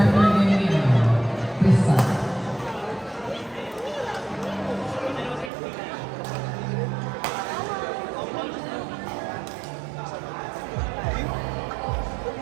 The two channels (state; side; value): drops out; left; at 5.5 s